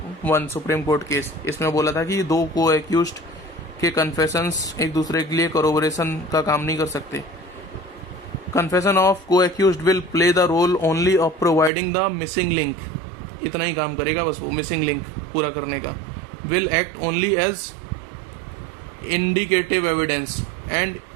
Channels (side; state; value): left; drops out; at 11.7 s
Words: supreme court case, इसमें बोला था कि दो को एक्यूज्ड के कन्फेशंस एक दूसरे के लिए कोरोबोरेशन का काम नहीं कर सकते. Confession of co accused will play the role only of providing the missing link. इतना ही काम करेगा बस वो, मिसिंग लिंक पूरा करने का. Will act only as indicative evidence and